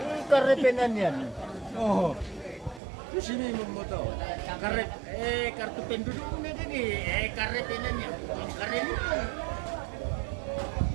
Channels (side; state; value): left; drops out; at 2.8 s